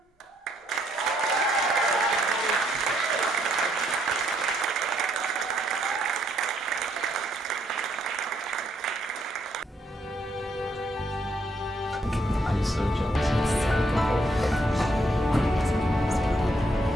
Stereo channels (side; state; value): both; normal; correlation 0.72